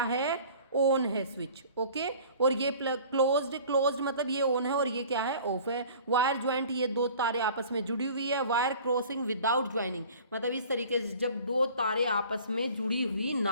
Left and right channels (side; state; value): both; inverted; correlation -0.47